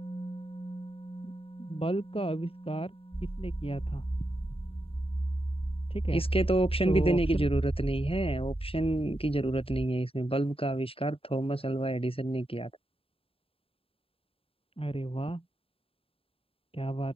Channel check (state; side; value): late; right; 0.27 ms